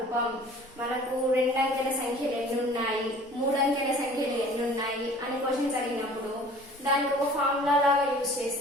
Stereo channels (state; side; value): normal; both; correlation 0.48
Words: మనకు 2 అంకెల సంఖ్యలు ఎన్ని ఉన్నాయి, 3 అంకెల సంఖ్యలు ఎన్ని ఉన్నాయి అని క్వశ్చన్స్ అడిగినప్పుడు దానికి ఒక ఫార్ములా లాగా యూజ్